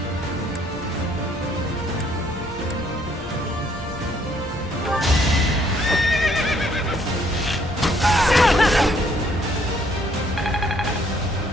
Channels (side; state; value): both; normal; correlation 0.66